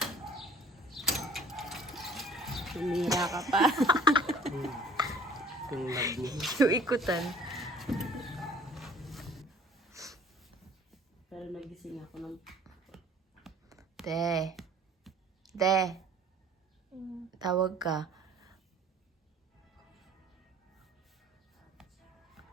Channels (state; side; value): normal; both; correlation 0.52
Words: Tumira ka pa. Yung ikutan. Pero nagising ako ng... Te. Tawag ka.